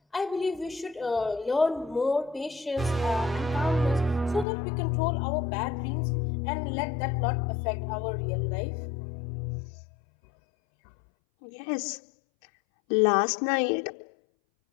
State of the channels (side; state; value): right; drops out; at 4.5 s